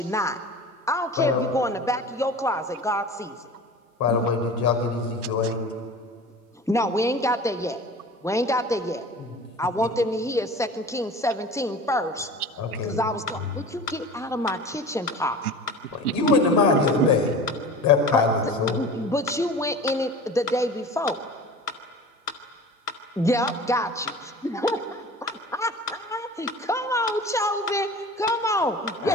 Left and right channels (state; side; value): normal; both; correlation 0.38